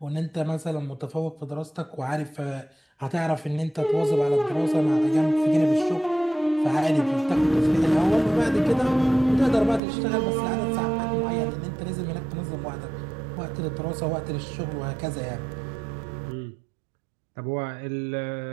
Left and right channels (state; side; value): drops out; left; at 9.8 s